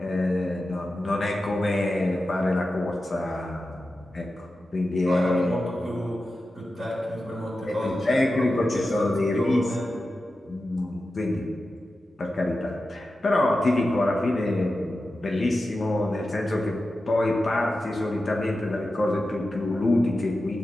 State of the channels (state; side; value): normal; both; correlation 0.92